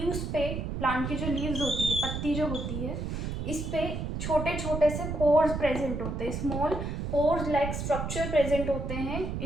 पे, प्लांट की जो लीव्स होती है, पत्ती जो होती है, इस पे छोटे छोटे से पोर्स प्रेजेंट होते हैं, small pores like structure present होते हैं।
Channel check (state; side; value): noise; right; rumble, 4 dB below the sound